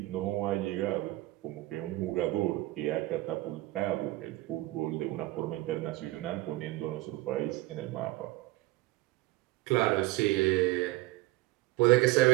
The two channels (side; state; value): left; quieter; 18.4 dB